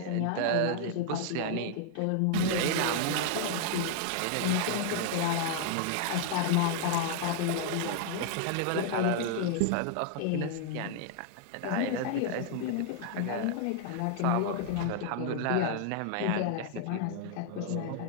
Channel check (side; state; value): both; different; correlation 0.00